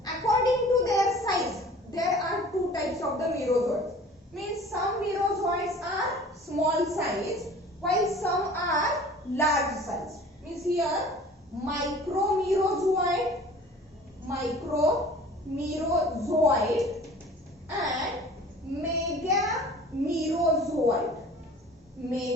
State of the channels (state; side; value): normal; both; correlation 0.46